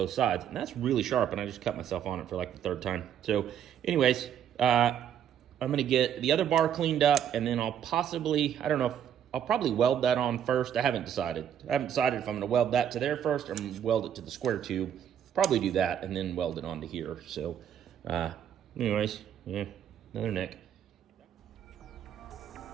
sides. And that's really sharp, and I just cut myself on it for like the third time. So anyways, I'm gonna get the other bar cleaned up, and then I'll possibly, I don't know, I'll probably weld that on first. I haven't decided if I'm gonna weld that to there first or I'm gonna weld it to the square tube. Probably do that and then weld it onto here. So anyways, yeah, another neck.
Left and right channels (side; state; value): left; quieter; 9.4 dB